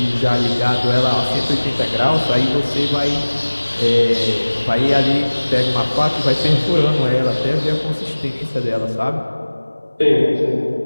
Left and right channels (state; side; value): inverted; both; correlation -1.00